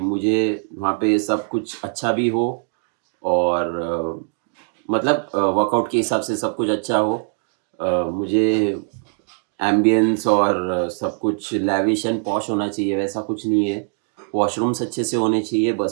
मुझे वहाँ पे सब कुछ अच्छा भी हो, और मतलब वर्कआउट के हिसाब से सब कुछ अच्छा हो। मुझे एम्बियंस और सब कुछ लैविश एंड पॉश होना चाहिए, वैसा कुछ नहीं है। वॉशरूम्स अच्छे से होने चाहिए,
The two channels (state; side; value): silent; left; 57 dB below the other